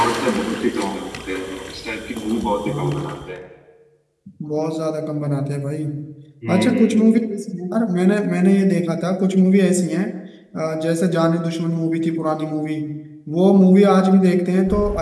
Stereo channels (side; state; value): both; identical; correlation 1.00